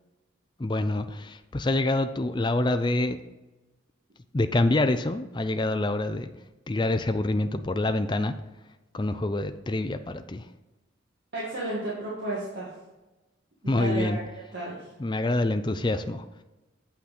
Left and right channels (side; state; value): both; normal; correlation 0.70